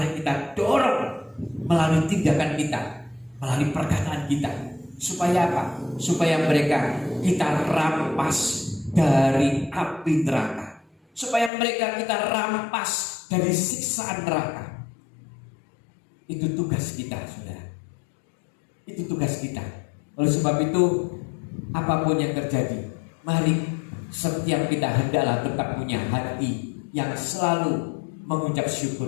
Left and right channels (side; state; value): right; drops out; at 11.5 s